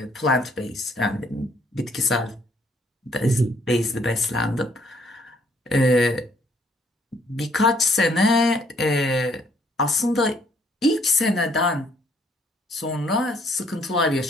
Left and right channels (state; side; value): normal; both; correlation 0.65